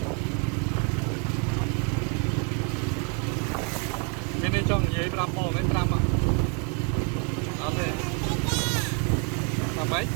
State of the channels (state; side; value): quieter; left; 36.9 dB